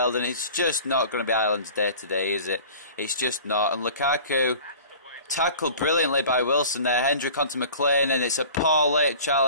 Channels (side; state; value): both; inverted; correlation -0.43